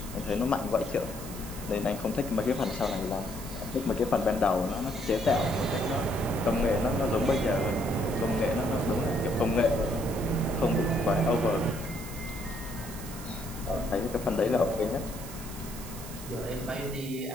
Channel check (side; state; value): right; noise; hiss, 13 dB below the sound